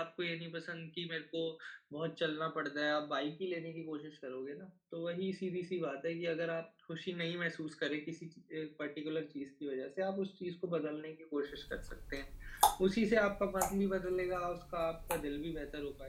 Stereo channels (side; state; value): both; identical; correlation 1.00